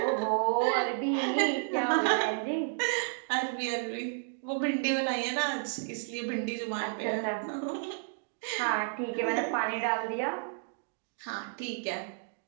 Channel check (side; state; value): left; silent; digital silence